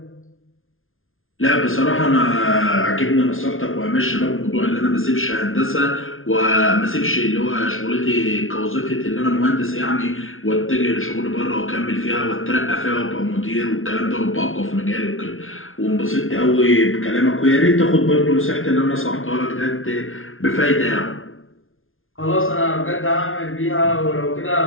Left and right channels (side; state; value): right; late; 0.60 ms